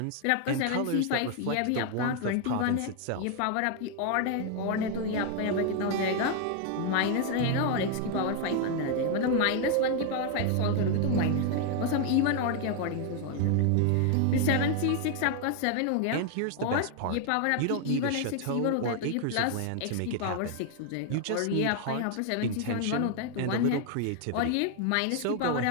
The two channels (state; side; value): different; both; correlation 0.00